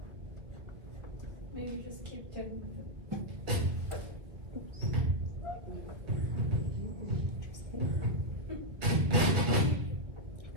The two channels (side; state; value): left; late; 2.1 ms